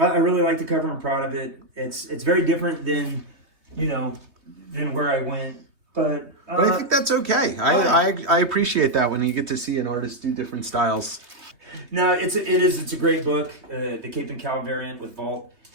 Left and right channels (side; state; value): left; late; 3.2 ms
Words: really like the cover. I'm proud of it. It's very different than where I went. But I think that's okay. I appreciate that when you get to see an artist do different styles. No, it's a great book, the Cape and Cal variant with Vault,